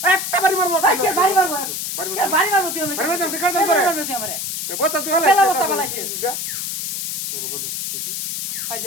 একটা বাড়ি মারবো ভাই কে বাড়ি মারবো কে বাড়ি মারবো তুই আমাকে বাড়ি মারবো তুই কাজ করে মারবো তুই আমারে বস্তা তুই পেলা হলাই বস্তা বলাইছি ভাই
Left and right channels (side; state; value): left; noise; hiss, 3 dB below the sound